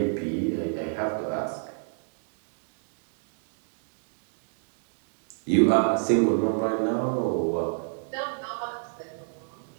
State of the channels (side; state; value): left; silent; digital silence